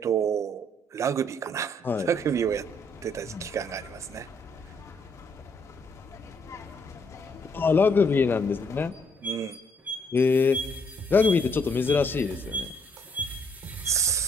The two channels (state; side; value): normal; both; correlation 0.69